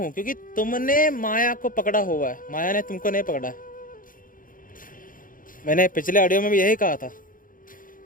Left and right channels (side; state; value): right; late; 0.40 ms